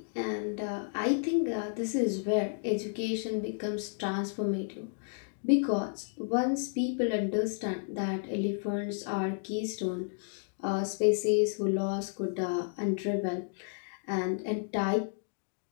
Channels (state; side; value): silent; right; digital silence